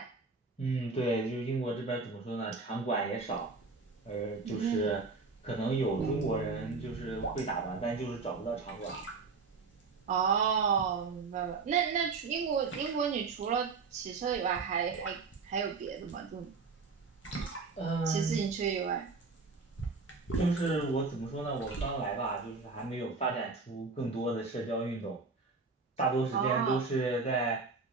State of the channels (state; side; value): quieter; left; 4.3 dB